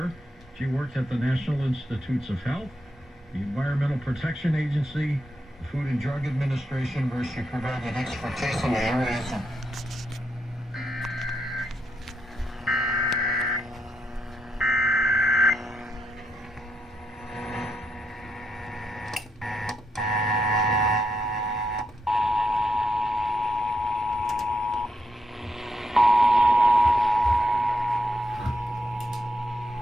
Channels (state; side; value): normal; both; correlation 0.81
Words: she worked at the National Institutes of Health, the Environmental Protection Agency, the Food and Drug Administration, where she provided expertise in the areas of